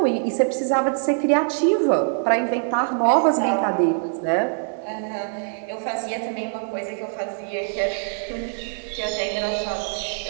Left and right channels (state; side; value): silent; left; 63 dB below the other